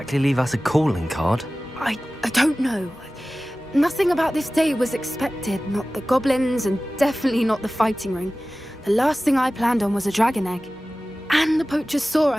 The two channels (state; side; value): normal; both; correlation 0.97